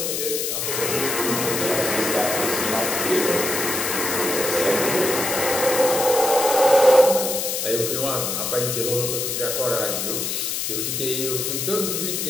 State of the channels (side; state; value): left; noise; hiss, 2 dB below the sound